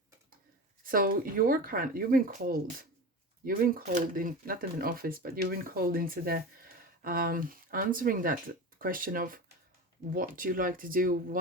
So you've been called. You've been called in, not in an office, but you've been called into the answering that question of what you like to do,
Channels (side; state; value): both; normal; correlation 0.29